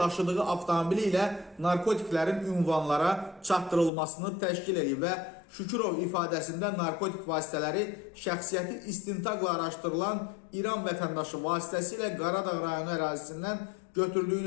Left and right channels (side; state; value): right; drops out; at 3.9 s